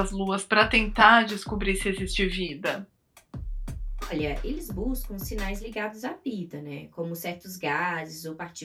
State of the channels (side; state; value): both; identical; correlation 1.00